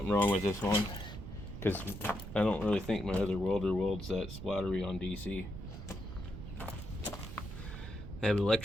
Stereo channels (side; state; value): right; noise; rumble, 10 dB below the sound